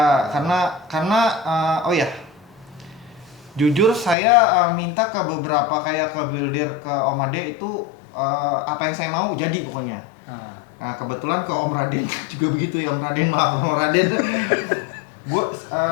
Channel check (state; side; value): drops out; right; at 4.2 s